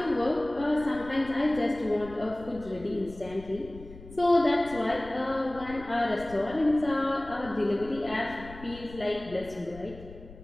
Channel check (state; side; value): noise; left; rumble, 17 dB below the sound